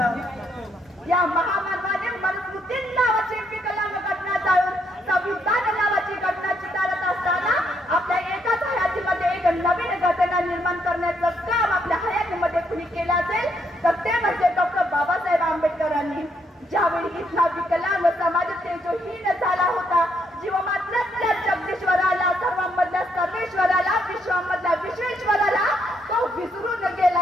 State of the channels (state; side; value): normal; both; correlation 0.74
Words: या महामानवाने मनुस्मृती नावाची विकलांग घटना जाळून संविधान नावाची घटना चितारत असताना आपल्या एकाच हयातीमध्ये एक नवीन घटना निर्माण करण्याचं काम आपल्या हयातीमध्ये कुणी केलं असेल तर ते म्हणजे डॉक्टर बाबासाहेब आंबेडकरांनी. ज्यावेळी इथला विकलांग समाज तेजोहीन झाला होता, जीवमात्रातल्या जगदीश्वराला, सर्वांमधल्या सर्वेश्वराला, विश्वामधल्या विश्वेश्वराला तो विसरून